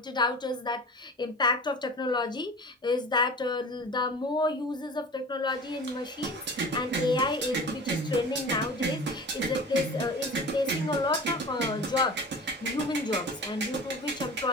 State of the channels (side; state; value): both; normal; correlation 0.38